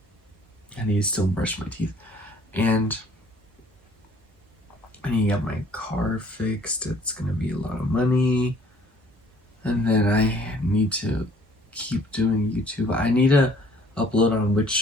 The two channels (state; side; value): normal; both; correlation 0.57